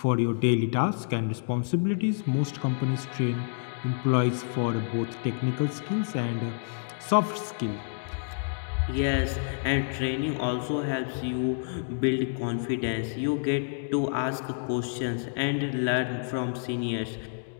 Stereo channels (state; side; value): silent; right; digital silence